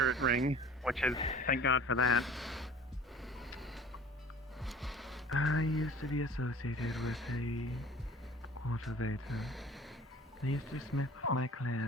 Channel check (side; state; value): both; normal; correlation 0.45